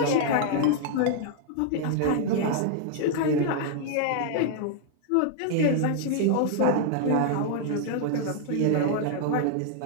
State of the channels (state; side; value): different; both; correlation 0.00